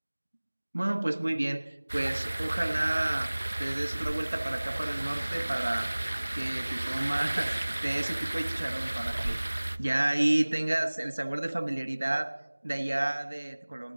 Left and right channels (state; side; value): inverted; both; correlation -1.00